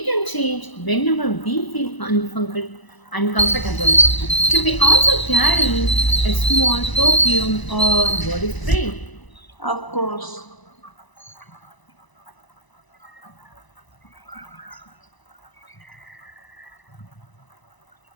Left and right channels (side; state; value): right; late; 1.0 ms